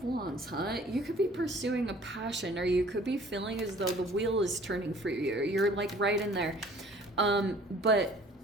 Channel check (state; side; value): normal; both; correlation 0.52